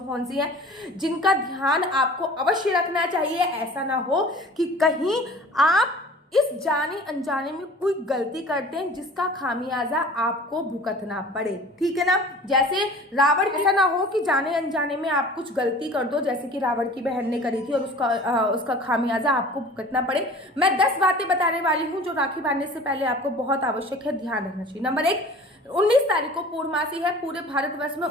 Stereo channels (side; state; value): both; normal; correlation 0.44